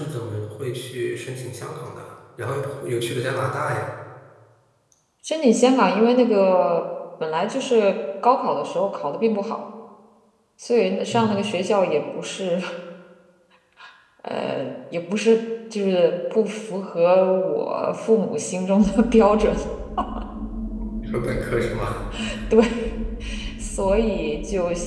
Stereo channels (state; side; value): identical; both; correlation 1.00